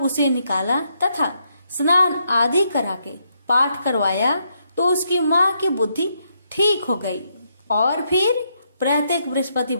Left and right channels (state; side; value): inverted; both; correlation -0.78